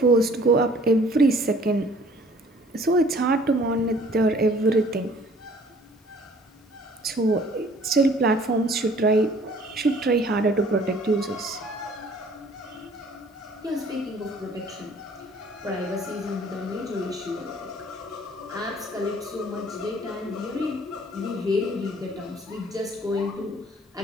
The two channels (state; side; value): normal; both; correlation 0.55